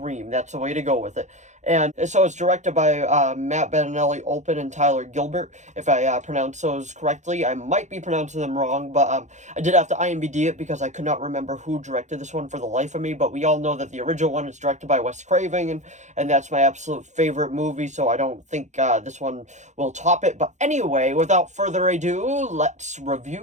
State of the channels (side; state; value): left; late; 0.34 ms